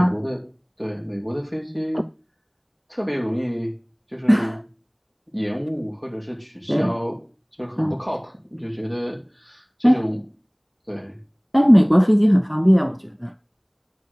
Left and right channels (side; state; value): both; identical; correlation 1.00